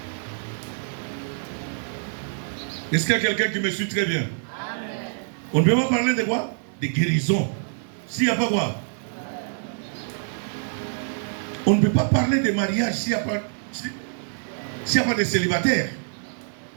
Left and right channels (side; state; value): left; silent; 55 dB below the other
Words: Est-ce qu'il y a quelqu'un qui me suit très bien? Amen. On ne peut pas parler de quoi? De guérison s'il n'y a pas quoi? On ne peut pas parler de mariage s'il n'y a pas de célibataire.